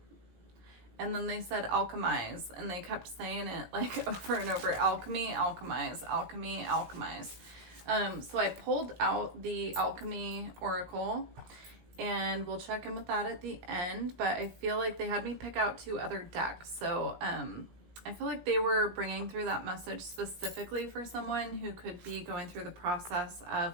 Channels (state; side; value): late; left; 17 ms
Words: And then they said alchemize, and they kept saying it like over and over, alchemy, alchemize, alchemy, alchemize. So I pulled out the alchemy oracle, and we'll check in with that at the end, but I feel like they had me pick out 2 other decks. So I feel like they were bringing through that message specifically for someone who could be going through the process